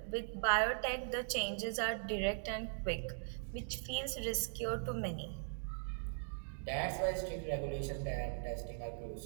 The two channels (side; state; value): left; silent; digital silence